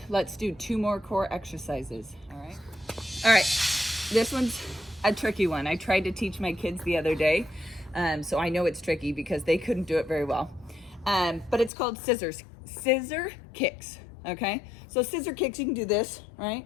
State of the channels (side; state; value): right; drops out; at 11.7 s